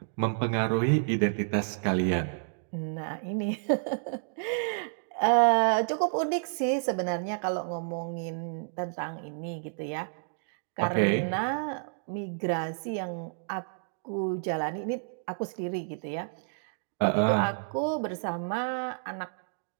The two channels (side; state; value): left; silent; digital silence